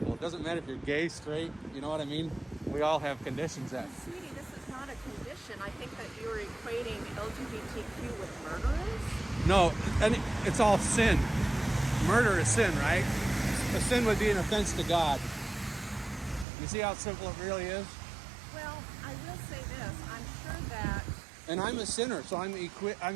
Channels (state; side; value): drops out; left; at 16.4 s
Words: It doesn't matter if you're gay, straight. You know what I mean? We all have conditions that. Sweetie, this is not a condition. I think that you're equating LGBTQ with murderers. No, and it's all sin. Murder is sin, right? A sin would be an offense to God. You see how simple it really is? Well, I will say this. I'm sure that. And I'm a sinner, so I'm